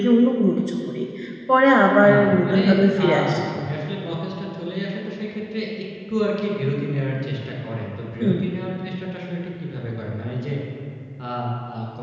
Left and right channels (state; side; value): identical; both; correlation 1.00